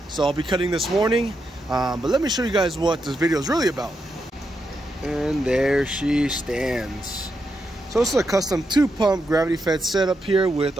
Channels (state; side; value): normal; both; correlation 0.84